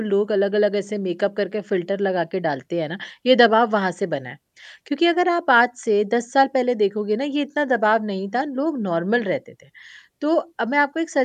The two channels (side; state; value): both; identical; correlation 1.00